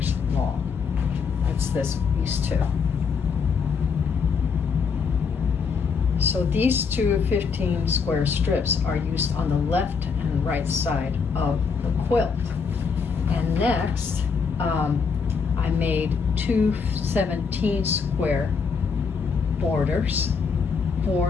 long. That's these 2. So these 2 15 square strips are used on the left and right side of the quilt. And next, I made 2 17 square borders.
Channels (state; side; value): quieter; right; 5.6 dB